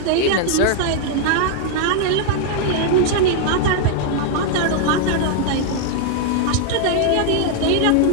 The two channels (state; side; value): different; both; correlation 0.00